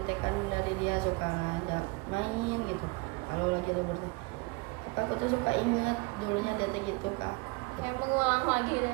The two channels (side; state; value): left; quieter; 25.9 dB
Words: dari dia, suka ngajak main gitu kalau lagi libur tuh. Apa aku tuh suka inget dulunya dia tuh gitu kak, Kayak mengulang lagi